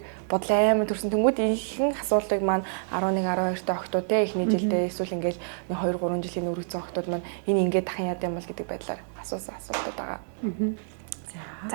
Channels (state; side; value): silent; left; digital silence